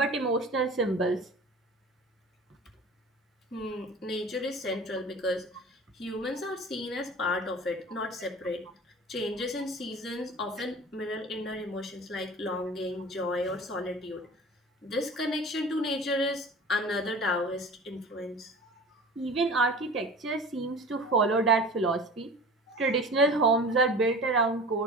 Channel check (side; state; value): both; normal; correlation 0.39